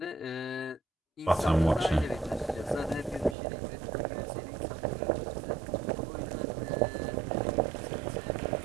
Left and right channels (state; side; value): drops out; left; at 3.4 s